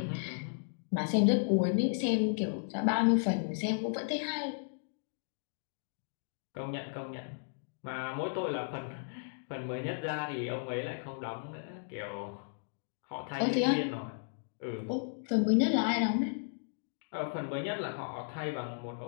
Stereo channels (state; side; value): silent; right; digital silence